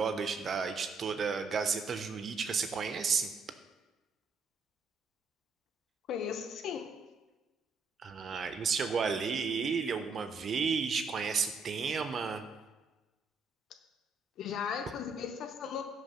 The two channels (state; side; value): quieter; left; 3.9 dB